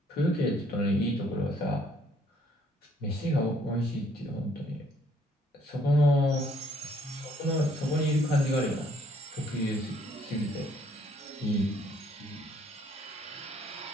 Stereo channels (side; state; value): both; normal; correlation 0.64